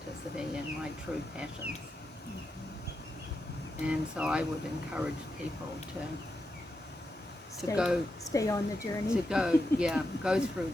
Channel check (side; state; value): both; normal; correlation 0.87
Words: and my true passions. And so I would encourage people to stay on the journey. Go through